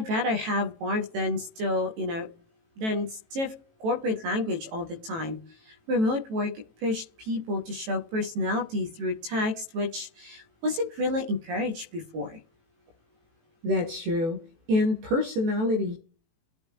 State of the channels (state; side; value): late; left; 18 ms